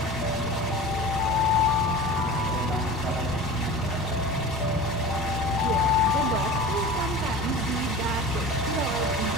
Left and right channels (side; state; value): both; normal; correlation 0.36